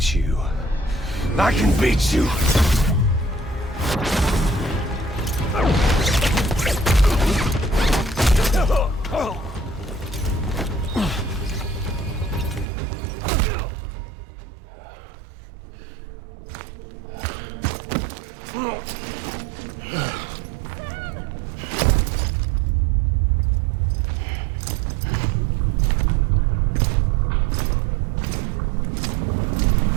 you. I can beat you.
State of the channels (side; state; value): left; drops out; at 12.7 s